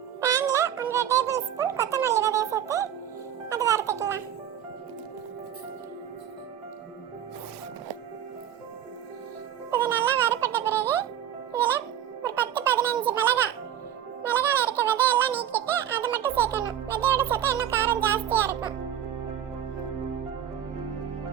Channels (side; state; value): left; quieter; 10.1 dB